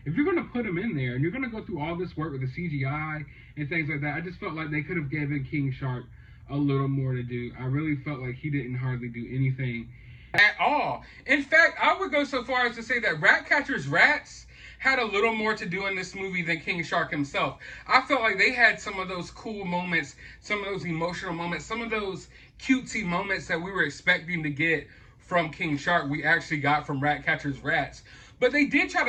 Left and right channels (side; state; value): both; identical; correlation 1.00